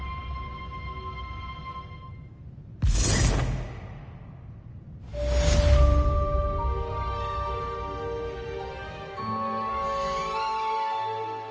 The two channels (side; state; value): both; identical; correlation 1.00